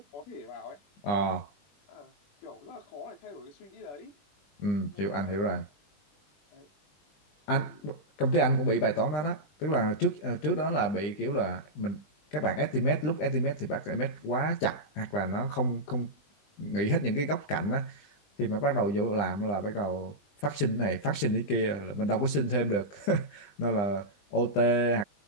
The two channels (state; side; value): late; right; 20 ms